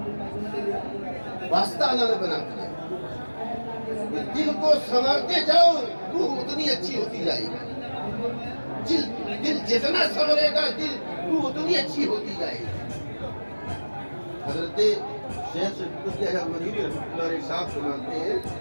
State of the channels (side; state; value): both; inverted; correlation -1.00